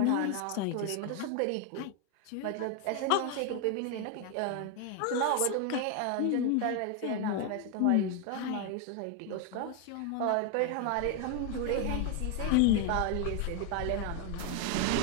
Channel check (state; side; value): different; both; correlation 0.01